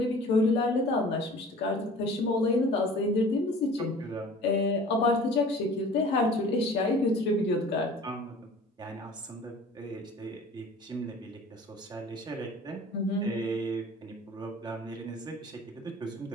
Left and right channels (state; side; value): normal; both; correlation 0.45